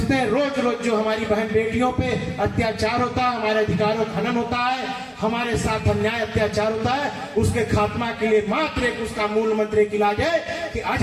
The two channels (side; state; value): both; identical; correlation 1.00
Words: हैं रोज रोज जो हमारी बहन बेटियों पे अत्याचार होता है, हमारे अधिकारों का हनन होता है, हमारे साथ अन्याय अत्याचार होता है, उसके खात्मा के लिए मात्र एक उसका मूल मंत्र एक इलाज है कि